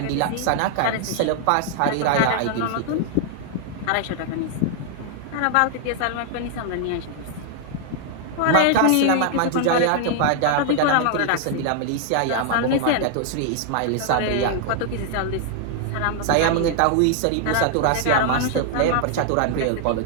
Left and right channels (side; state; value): both; different; correlation 0.00